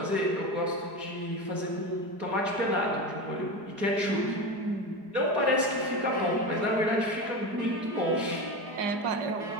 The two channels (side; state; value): left; late; 4.8 ms